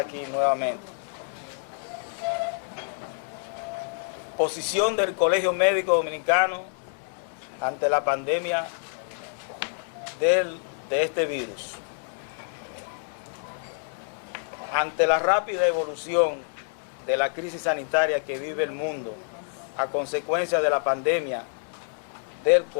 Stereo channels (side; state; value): right; silent; digital silence